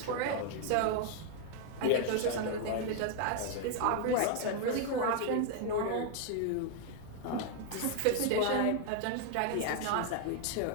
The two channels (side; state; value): both; different; correlation 0.00